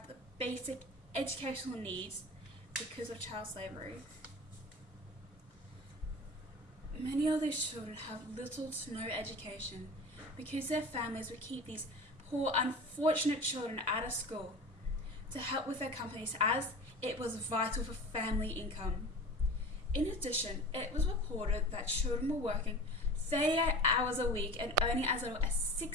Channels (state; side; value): normal; both; correlation 0.36